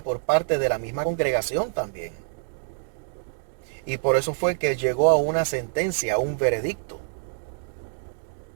por parte de la misma congregación también. Y por eso fue que llegó a una sentencia, a un veredicto.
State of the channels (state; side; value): silent; left; digital silence